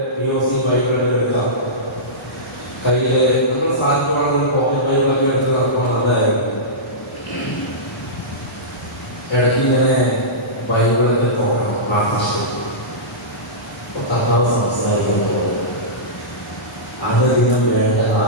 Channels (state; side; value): normal; both; correlation -0.17